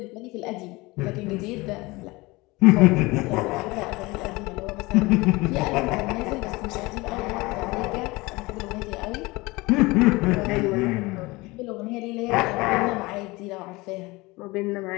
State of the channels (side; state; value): right; quieter; 22.7 dB